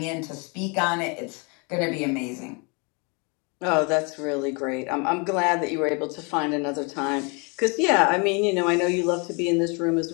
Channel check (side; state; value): right; quieter; 32.3 dB